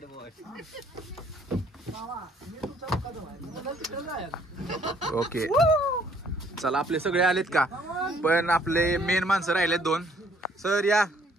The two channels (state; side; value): normal; both; correlation 0.63